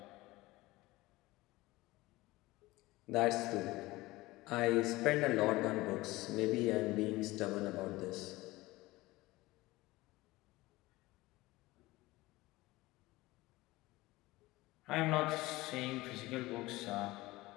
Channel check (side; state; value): right; quieter; 19.6 dB